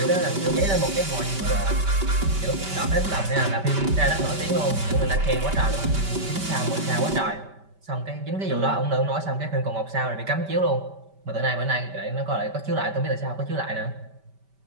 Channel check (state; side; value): late; left; 5.1 ms